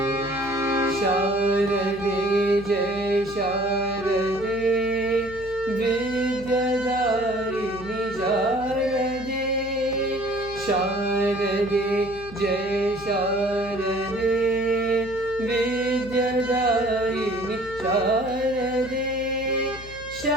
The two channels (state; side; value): noise; left; hum, 16 dB below the sound